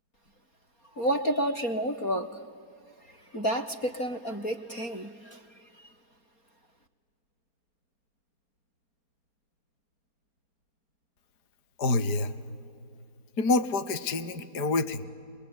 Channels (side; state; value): right; late; 4.3 ms